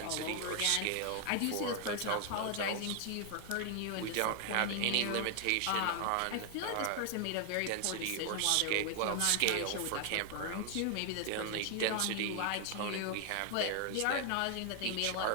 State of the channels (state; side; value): different; both; correlation 0.00